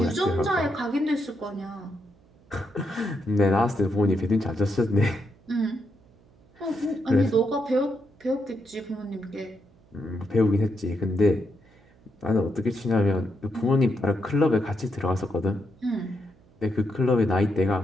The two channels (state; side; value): noise; right; hum, 30 dB below the sound